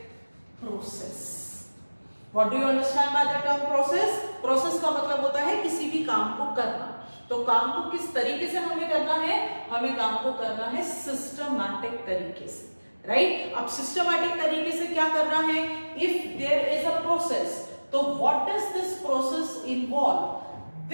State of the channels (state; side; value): inverted; both; correlation -1.00